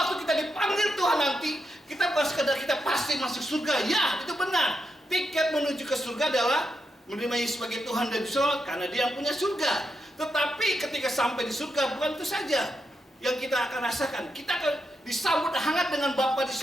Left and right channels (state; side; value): normal; both; correlation 0.84